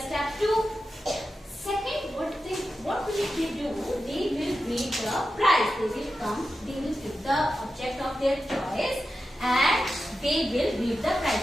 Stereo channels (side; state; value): both; normal; correlation 0.91